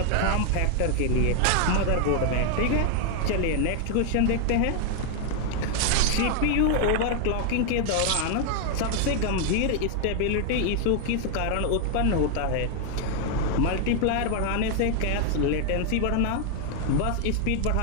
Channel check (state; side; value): different; both; correlation 0.00